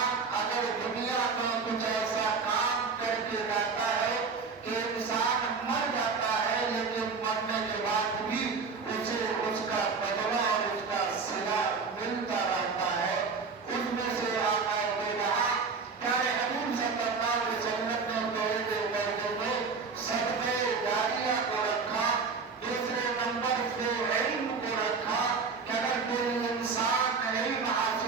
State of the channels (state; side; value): quieter; left; 5.0 dB